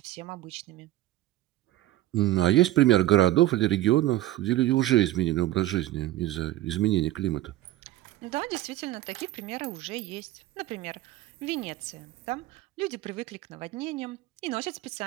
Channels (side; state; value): left; quieter; 15.2 dB